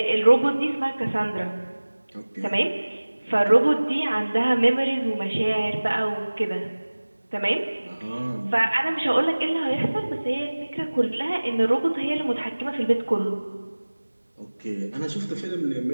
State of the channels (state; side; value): inverted; both; correlation -1.00